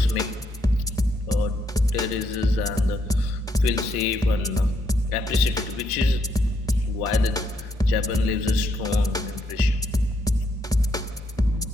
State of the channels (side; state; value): both; normal; correlation 0.75